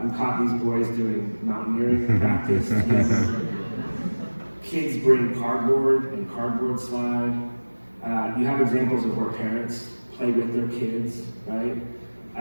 We caught these boys doing mountaineering practice. Kids bring cardboard and cardboard slide. You have examples of where parents play with their kids, right?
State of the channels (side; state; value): both; inverted; correlation -1.00